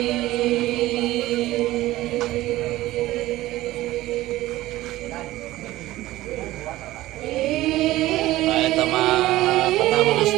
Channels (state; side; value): quieter; left; 16.6 dB